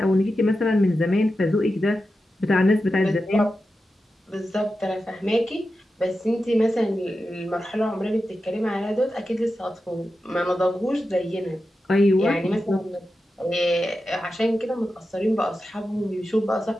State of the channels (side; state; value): both; normal; correlation 0.91